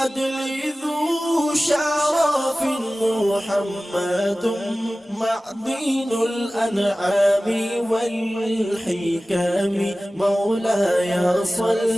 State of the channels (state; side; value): normal; both; correlation 0.97